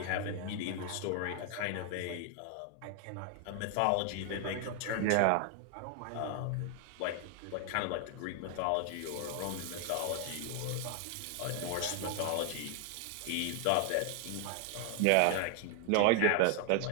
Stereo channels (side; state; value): both; different; correlation 0.00